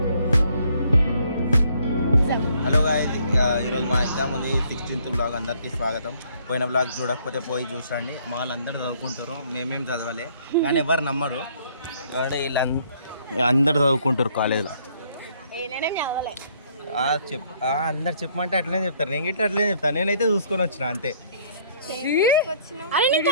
హలో గాయ్స్, ఈరోజు మా ఎగ్జామ్ ఉంది 16th బ్లాగ్. అందరికీ స్వాగతం. పోయిన బ్లాగ్ చూడకపోతే పోయి చూసండి. మా వాళ్ళందరూ చదువుకుంటారు, మేమేం చదవాలి కానీ ఎవరు నమ్మరు. వీళ్ళు అందరు చదువుకుంటారు కాలేజ్లో. అందరు చెప్పమంటే అట్లనే చెప్తారు, నేను గిట్ట అట్లనే చెప్తాను. నేనైతే చూసుకొని వచ్చిన అంతే.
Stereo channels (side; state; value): both; inverted; correlation -0.64